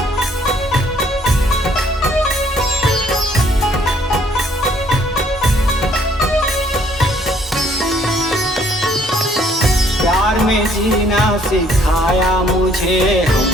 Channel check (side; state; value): both; normal; correlation 0.63